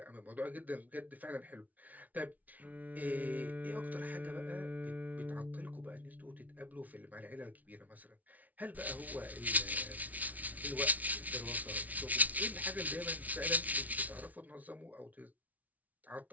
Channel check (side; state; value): left; late; 0.073 ms